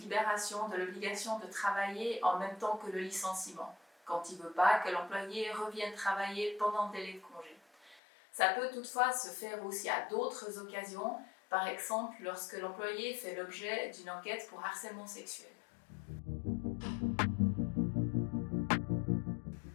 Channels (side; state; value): right; drops out; at 8.0 s